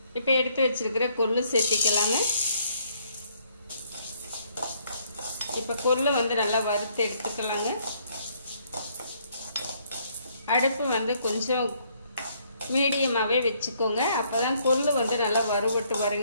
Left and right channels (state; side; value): inverted; both; correlation -0.67